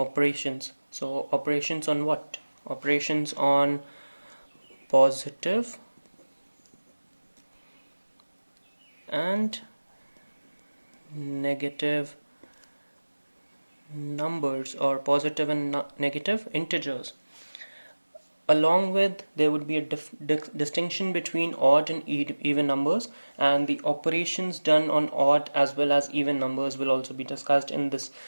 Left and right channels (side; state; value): both; inverted; correlation -1.00